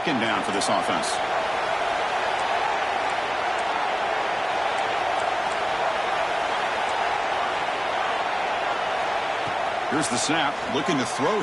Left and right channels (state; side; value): identical; both; correlation 1.00